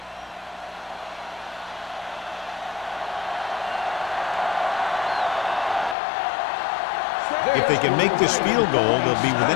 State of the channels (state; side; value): drops out; right; at 6.0 s